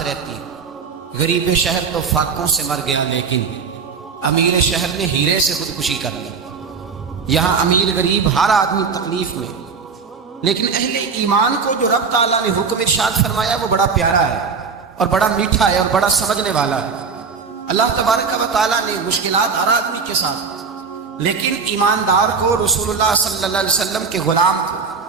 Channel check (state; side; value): quieter; left; 5.4 dB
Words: رہتی ہے۔ غریب شہر تو فاقوں سے مر گیا، لیکن امیر شہر نے ہیرے سے خودکشی کر لی۔ یہاں امیر غریب ہر آدمی تکلیف میں، لیکن اہل ایمان کو جو رب تعالیٰ نے حکم ارشاد فرمایا وہ بڑا پیارا ہے، اور بڑا میٹھا ہے، اور بڑا سمجھنے والا ہے۔ اللہ تبارک و تعالیٰ نے مشکلات ہر آدمی کے ساتھ، لیکن ایماندار کو، رسول اللہ صلی اللہ علیہ وسلم کے غلام کو،